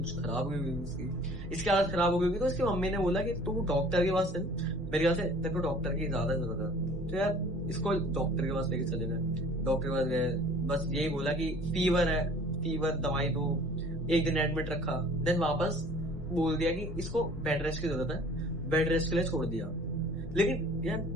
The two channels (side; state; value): both; normal; correlation 0.50